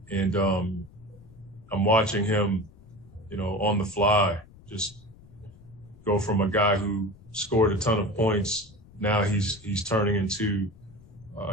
And I'm watching him, on the fly, just go from a guy who scored a ton of points. Now he's turning into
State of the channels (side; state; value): left; noise; rumble, 23 dB below the sound